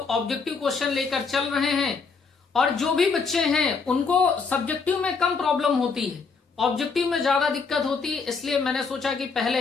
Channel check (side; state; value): right; quieter; 4.9 dB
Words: ऑब्जेक्टिव क्वेश्चन लेकर चल रहे हैं और जो भी बच्चे हैं उनको सब्जेक्टिव में कम प्रॉब्लम होती है, ऑब्जेक्टिव में ज्यादा दिक्कत होती है। इसलिए मैंने सोचा कि